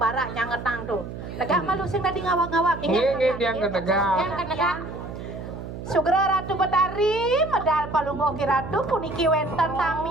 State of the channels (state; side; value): noise; right; hum, 10 dB below the sound